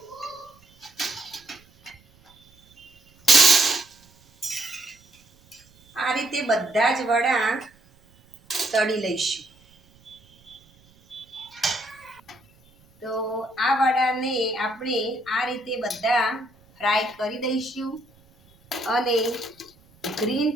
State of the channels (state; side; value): noise; right; rumble, 30 dB below the sound